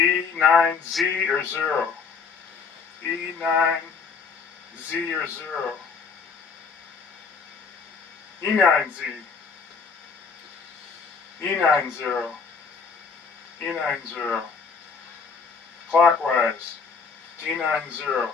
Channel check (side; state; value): right; quieter; 5.4 dB